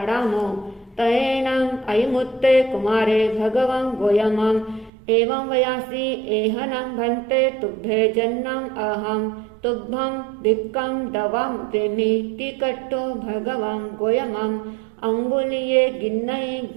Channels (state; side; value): drops out; left; at 4.9 s